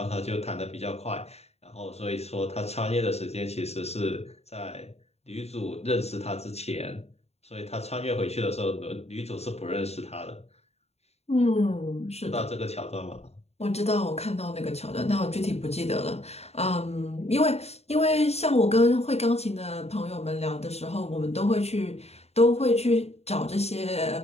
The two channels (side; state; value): right; late; 0.30 ms